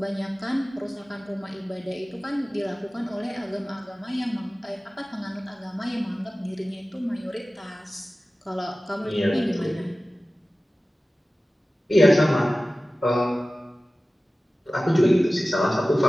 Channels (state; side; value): normal; both; correlation 0.97